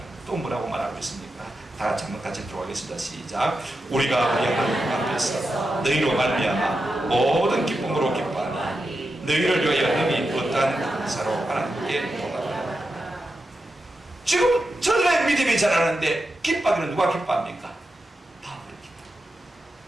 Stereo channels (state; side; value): normal; both; correlation 0.89